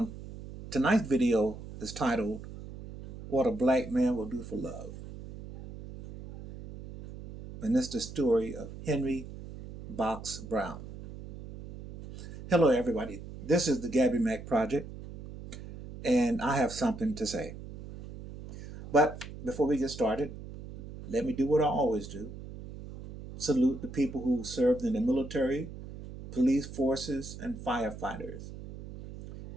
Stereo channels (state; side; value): noise; right; hum, 12 dB below the sound